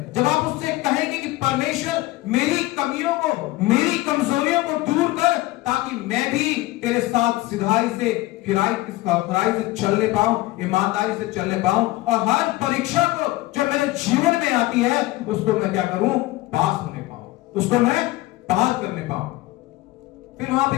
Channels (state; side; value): quieter; right; 18.7 dB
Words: जब आप उससे कहेंगे कि परमेश्वर मेरी कमियों को, मेरी कमजोरियों को दूर कर, ताकि मैं भी तेरे साथ सिधाई से, खराई से चलने पाऊं, ईमानदारी से चलने पाऊं, और हर परीक्षा को जो मेरे जीवन में आती है उसको मैं क्या करूं? पास होने पाऊं, उसको मैं पार करने पाऊं। फिर वहां